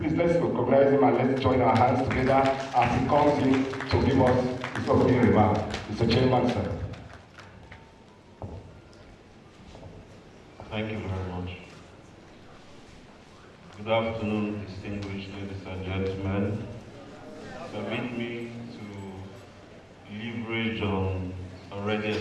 let's recognize him and let's join our hands together as he comes in to give us his opening remark. Mr. Chairman, sir. Thank you very much. Good afternoon, distinguished ladies and gentlemen. Permit me to leverage on already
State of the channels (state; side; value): identical; both; correlation 1.00